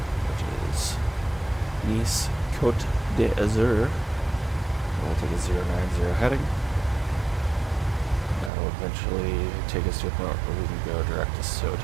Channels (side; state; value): left; drops out; at 8.5 s